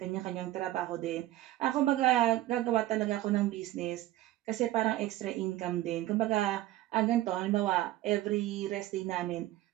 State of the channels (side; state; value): left; quieter; 15.5 dB